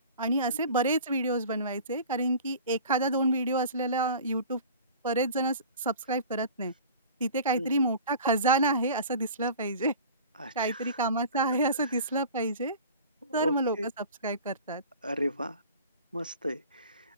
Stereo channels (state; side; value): inverted; both; correlation -0.40